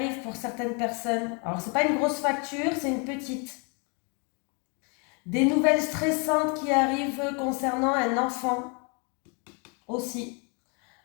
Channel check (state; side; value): quieter; right; 34.0 dB